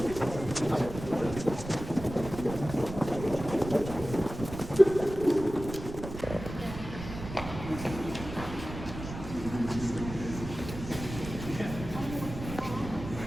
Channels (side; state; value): right; noise; rumble, 10 dB below the sound